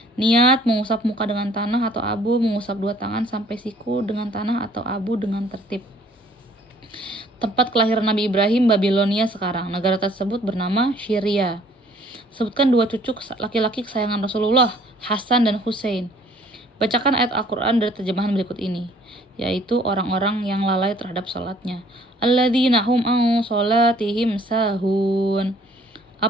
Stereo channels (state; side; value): normal; both; correlation 0.58